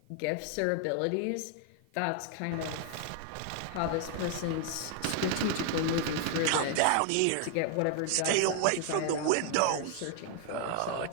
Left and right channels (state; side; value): different; both; correlation 0.00